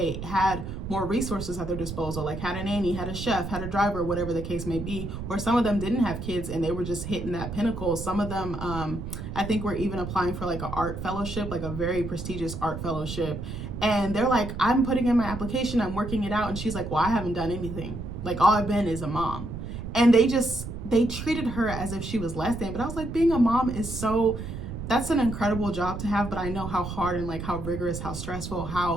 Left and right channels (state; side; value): noise; right; rumble, 7 dB below the sound